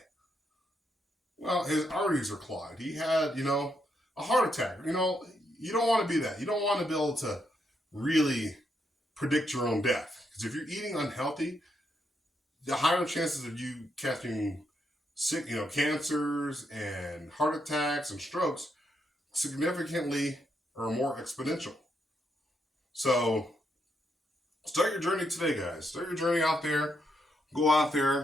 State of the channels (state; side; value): normal; both; correlation 0.79